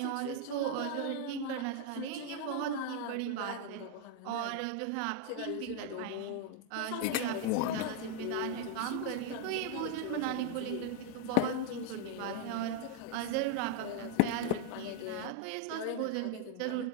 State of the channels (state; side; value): different; both; correlation 0.01